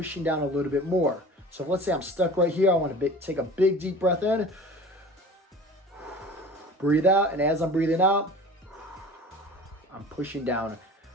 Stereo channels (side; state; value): both; normal; correlation 0.40